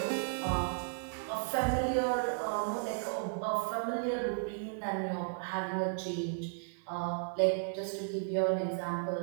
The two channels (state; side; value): silent; left; 55 dB below the other